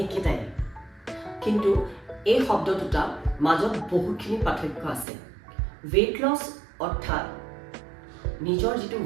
একেটাই, কিন্তু এই শব্দ দুটা মাজত বহুখিনি পাৰ্থক্য আছে। weight loss অৰ্থাৎ নিজৰ যিটো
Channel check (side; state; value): left; drops out; at 5.1 s